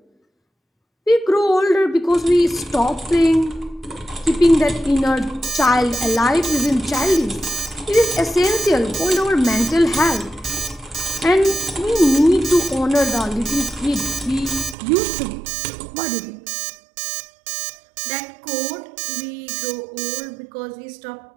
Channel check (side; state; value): left; drops out; at 14.8 s